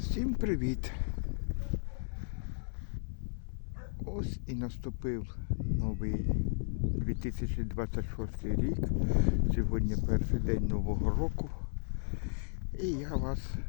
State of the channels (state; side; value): silent; right; 55 dB below the other